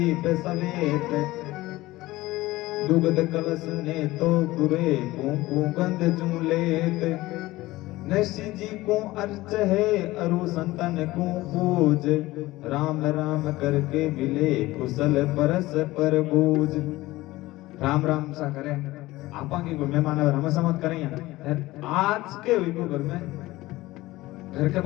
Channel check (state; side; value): quieter; right; 18.4 dB